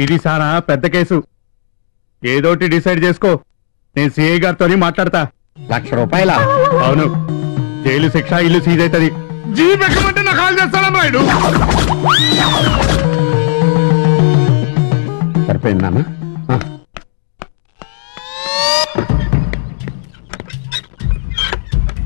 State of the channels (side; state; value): right; silent; digital silence